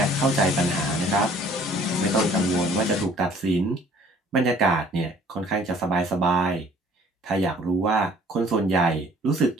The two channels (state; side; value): normal; both; correlation 0.55